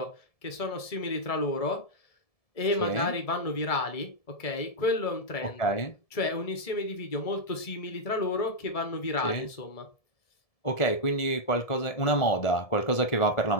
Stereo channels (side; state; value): right; late; 1.7 ms